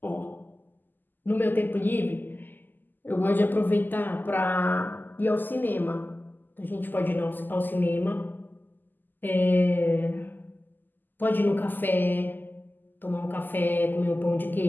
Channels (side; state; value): right; late; 0.089 ms